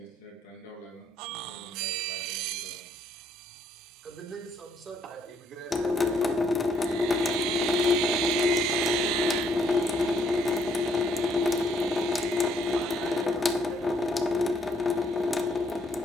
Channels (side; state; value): both; normal; correlation 0.69